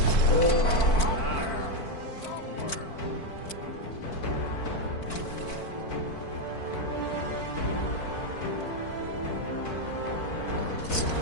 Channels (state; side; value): late; right; 4.5 ms